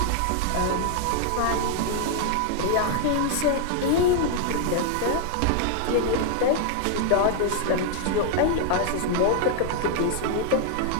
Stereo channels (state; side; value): different; both; correlation 0.00